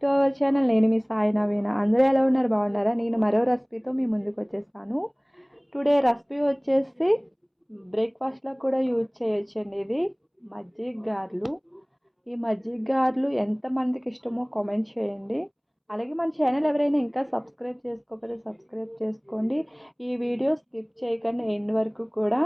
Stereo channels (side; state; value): both; identical; correlation 1.00